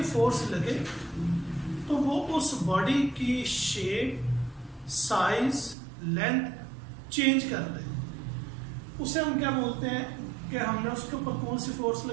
फोर्स लगे तो वो उस बॉडी की शेप, साइज, लेंथ चेंज कर दे। उसे हम क्या बोलते हैं कि हमने उसके ऊपर कौन सी फोर्स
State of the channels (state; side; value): drops out; left; at 5.8 s